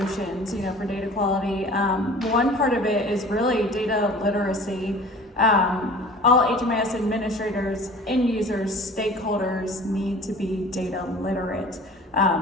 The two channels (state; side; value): normal; both; correlation 0.44